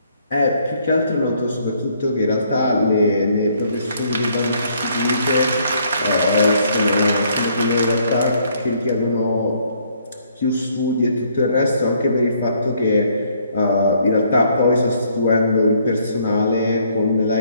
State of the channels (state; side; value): inverted; both; correlation -0.66